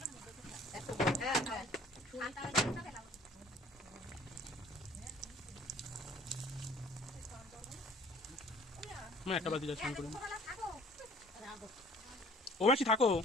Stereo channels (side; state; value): both; normal; correlation 0.52